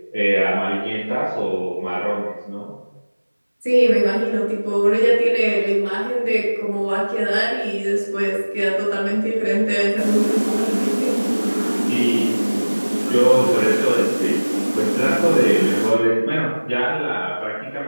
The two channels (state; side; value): inverted; both; correlation -1.00